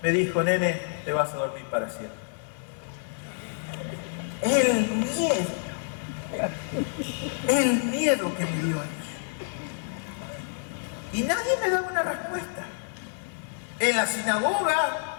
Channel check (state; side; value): silent; right; 56 dB below the other